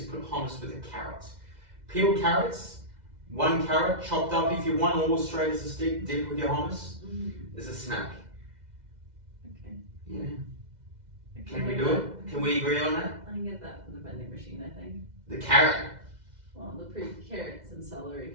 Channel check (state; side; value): late; left; 2.0 ms